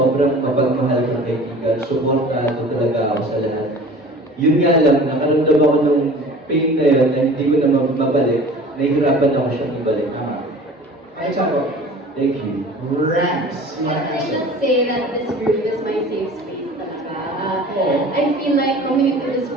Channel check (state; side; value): normal; both; correlation 0.43